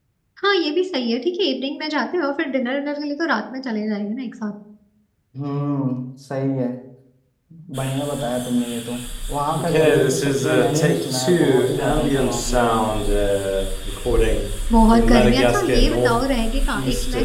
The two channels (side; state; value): both; identical; correlation 1.00